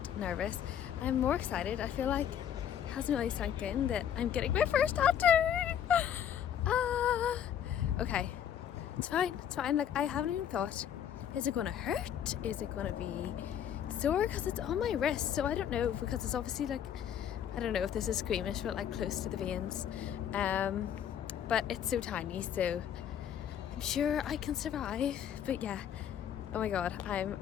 nervous. I'm more excited. I feel like it hasn't really sunk in that I'm getting my first tattoo. Okay, it's fine. Like I haven't even thought, is it gonna hurt? Is it gonna be sore? Because it's on my wrist, so I don't know, because it's obviously like, I don't know if this is squeamish, but like close to the veins. But it's so tiny, so I'm sure I can survive. But yeah, oh my god, I'm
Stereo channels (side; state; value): right; quieter; 9.5 dB